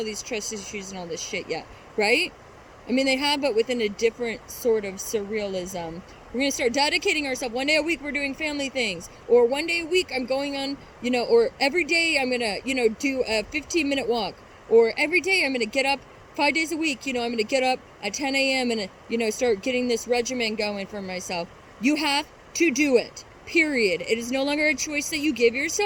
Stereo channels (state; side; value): identical; both; correlation 1.00